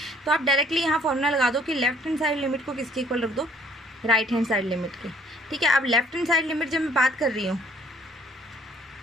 तो आप डायरेक्टली यहाँ फॉर्मूला लगा दो कि लेफ्ट हैंड साइड लिमिट को किसके इक्वल रख दो, राइट हैंड साइड लिमिट के, ठीक है। अब लेफ्ट हैंड साइड लिमिट जब मैं बात कर रही हूँ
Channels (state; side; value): normal; both; correlation 0.60